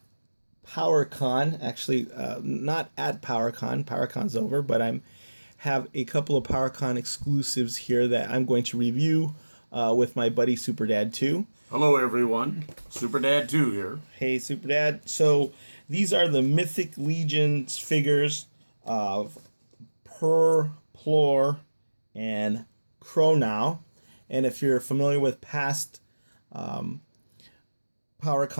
Actually, not at PowerCon. PowerCon's over, but I have a couple of PowerCon exclusives here that I'm going to review with my buddy Superdad 2. Hello, everyone. Superdad 2 here. Hey, Superdad. So these are the Mythic Legions figures of Purrrplor and Kronnaw. And if you're familiar with past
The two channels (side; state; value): both; inverted; correlation -1.00